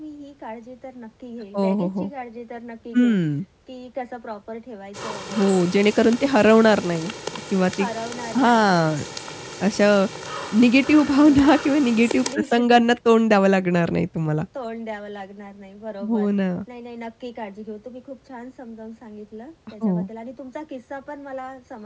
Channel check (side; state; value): both; identical; correlation 1.00